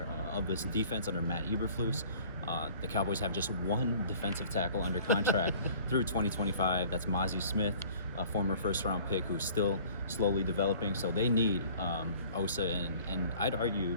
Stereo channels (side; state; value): both; inverted; correlation -0.50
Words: of this defense under Matt Eberflus. The Cowboys have just one defensive tackle under contract through 2025. That's Mazi Smith, a former first-round pick who's still slowly developing. So they need Osa, and I'd argue,